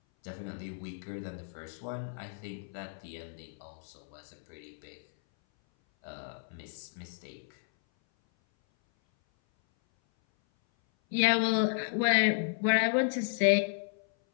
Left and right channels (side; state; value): right; silent; 56 dB below the other